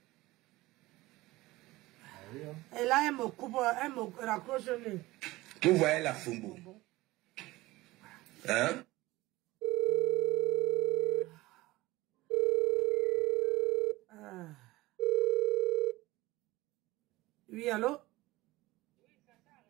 Et là, elle me coupe, elle me raccroche le nez. Vous voyez la Fumbu. Hein? Oui, allô?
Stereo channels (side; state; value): left; quieter; 19.1 dB